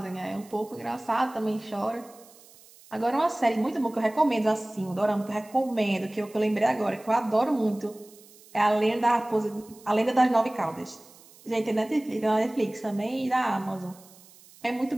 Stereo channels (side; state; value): right; noise; hiss, 24 dB below the sound